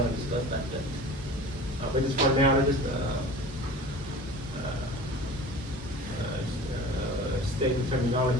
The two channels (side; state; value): both; normal; correlation 0.39